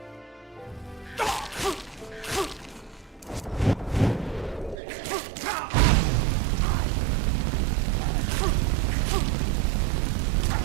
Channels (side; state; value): left; drops out; at 4.8 s